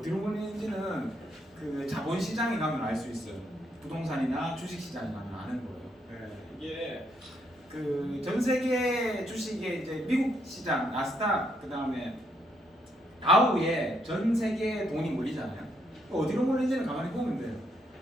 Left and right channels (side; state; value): both; normal; correlation 0.74